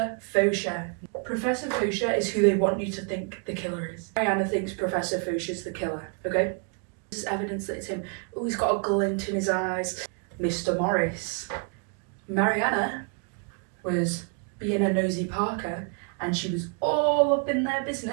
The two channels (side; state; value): left; quieter; 39.7 dB